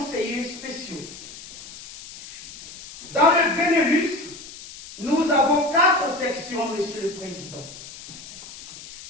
spéciaux. Dans le Benelux, nous avons 4 sections, Monsieur le Président.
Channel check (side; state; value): left; noise; hiss, 15 dB below the sound